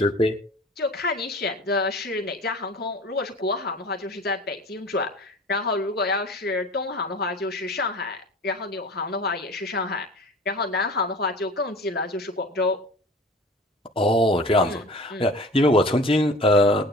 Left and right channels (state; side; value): normal; both; correlation 0.40